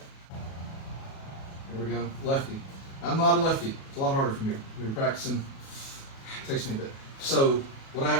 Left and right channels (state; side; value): late; right; 37 ms